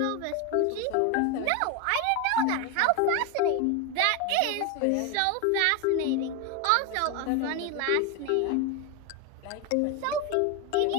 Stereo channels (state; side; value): different; both; correlation 0.02